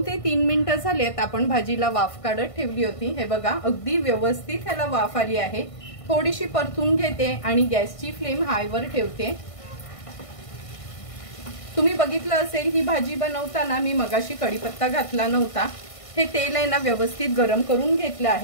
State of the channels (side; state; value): right; late; 1.5 ms